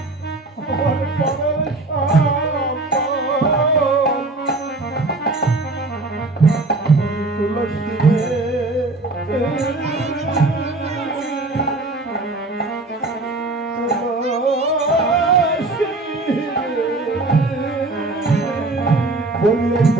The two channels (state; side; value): quieter; left; 3.1 dB